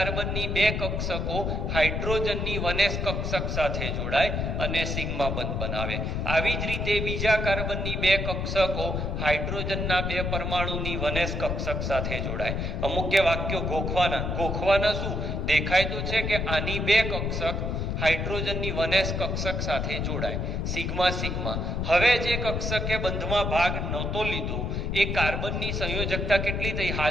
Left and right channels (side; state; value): left; noise; rumble, 1 dB below the sound